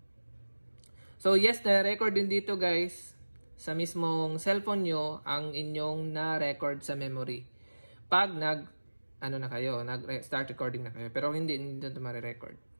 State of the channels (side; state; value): both; inverted; correlation -1.00